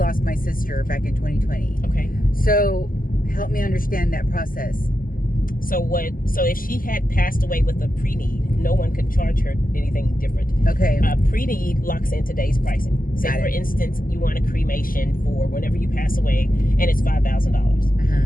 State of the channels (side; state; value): right; late; 0.41 ms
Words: my sister back in 2020. Okay. So help me understand that process. So if she had passed away with a pre-need, no one could charge her anything different. Okay. Pre-need locks in today's pricing. Say, for instance, you want a cremation for whenever you pass away, and it's